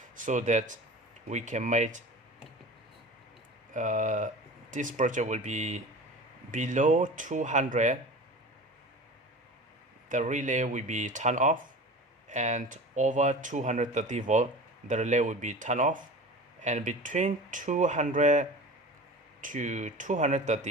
so that we can make this project will be below 200, the relay will be turned off, and over 230 volt the relay will be turned off, and between 200 to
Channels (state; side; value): normal; both; correlation 0.36